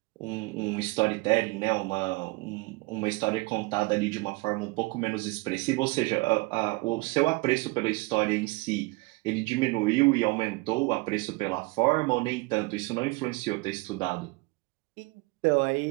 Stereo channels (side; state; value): left; quieter; 24.5 dB